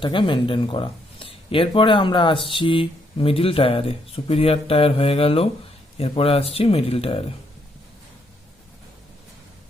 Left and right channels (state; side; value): normal; both; correlation 0.74